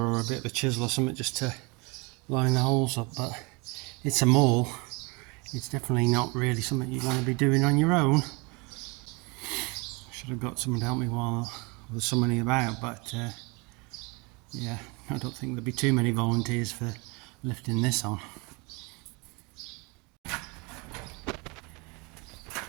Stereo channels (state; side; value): quieter; left; 28.6 dB